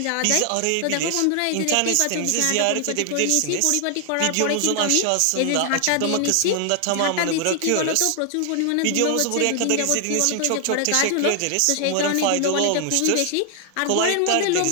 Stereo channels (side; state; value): both; different; correlation 0.00